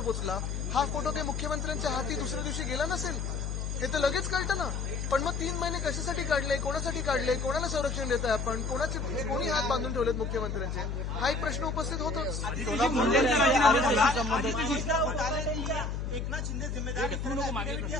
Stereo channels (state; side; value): noise; left; hum, 3 dB below the sound